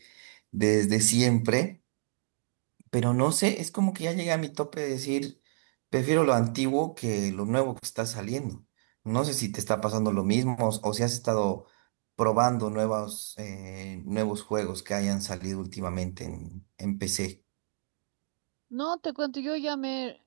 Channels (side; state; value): left; silent; digital silence